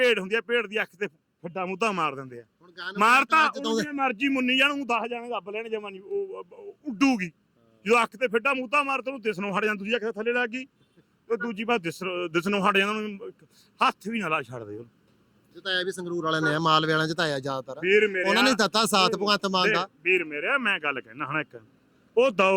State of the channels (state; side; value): identical; both; correlation 1.00